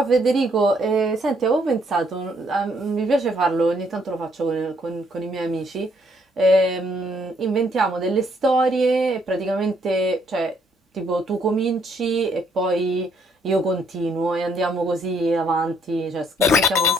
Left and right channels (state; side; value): normal; both; correlation 0.70